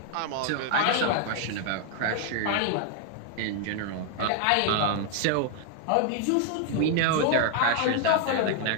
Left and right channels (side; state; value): both; different; correlation 0.00